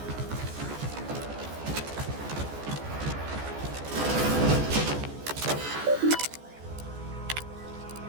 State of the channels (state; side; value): late; left; 14 ms